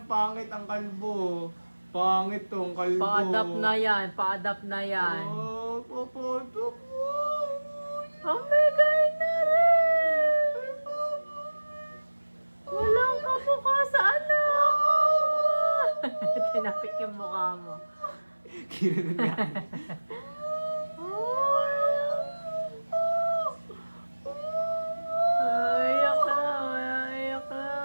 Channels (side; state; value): both; inverted; correlation -1.00